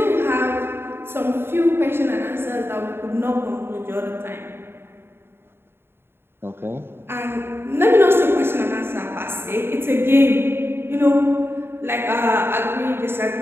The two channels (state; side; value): late; left; 0.11 ms